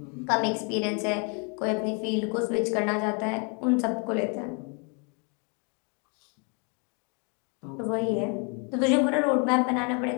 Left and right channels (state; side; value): quieter; right; 36.1 dB